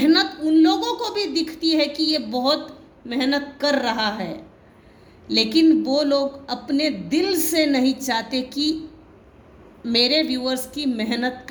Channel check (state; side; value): identical; both; correlation 1.00